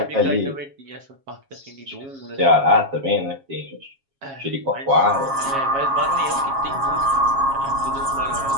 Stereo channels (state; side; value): late; left; 7.3 ms